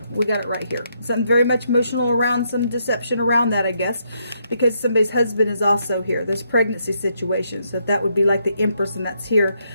We got it right here. Something very much emotional around, some deception around that, I guess, because somebody's husband is also here. There's pregnancy situations, so that would be like the Empress, and that's here.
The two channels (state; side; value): inverted; both; correlation -0.76